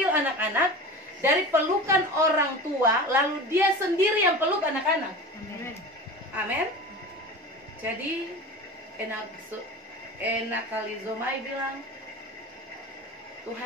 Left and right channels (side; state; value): both; normal; correlation 0.32